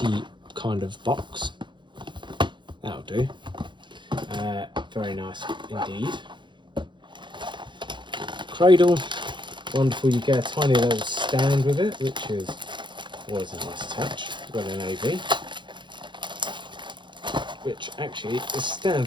kind of box. That'll do. Very nice indeed. Cradle. Wonderful. You get a tiny little stand with it, which is always a nice touch. Got an AV. Which actually, this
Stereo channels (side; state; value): left; late; 0.23 ms